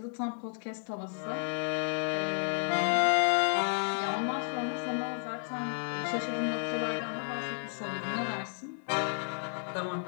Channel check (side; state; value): right; silent; 56 dB below the other